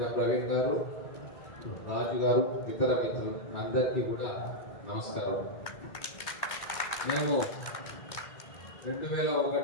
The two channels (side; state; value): right; late; 2.1 ms